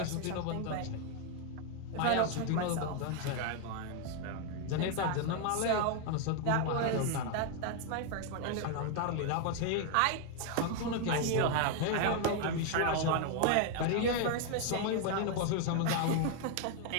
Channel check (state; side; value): different; both; correlation 0.00